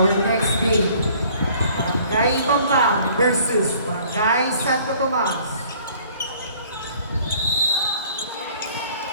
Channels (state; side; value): inverted; both; correlation -0.56